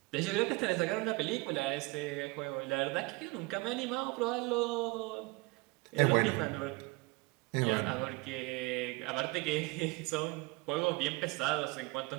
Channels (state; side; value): quieter; left; 25.1 dB